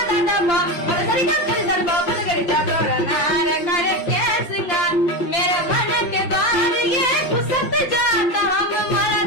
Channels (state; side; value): late; right; 5.8 ms